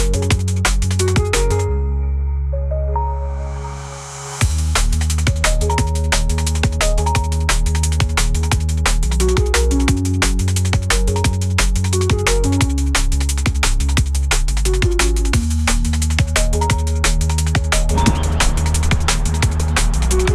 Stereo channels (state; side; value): identical; both; correlation 1.00